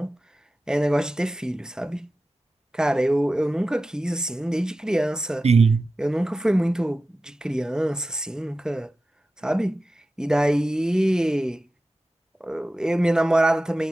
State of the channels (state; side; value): normal; both; correlation 0.94